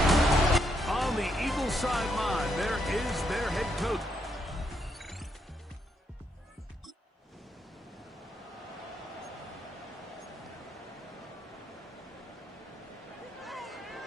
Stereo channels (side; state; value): both; normal; correlation 0.77